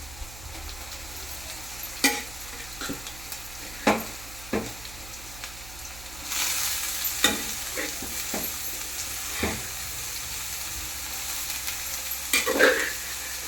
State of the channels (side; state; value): right; noise; hum, 13 dB below the sound